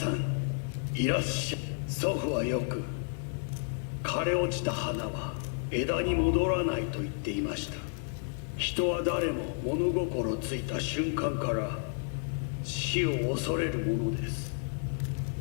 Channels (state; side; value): silent; right; 57 dB below the other